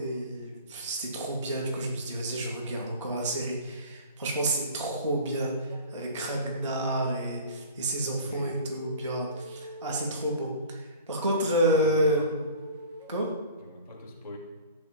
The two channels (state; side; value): inverted; both; correlation -0.42